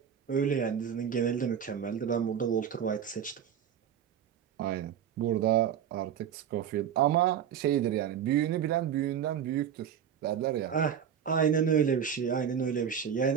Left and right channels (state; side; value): quieter; left; 8.6 dB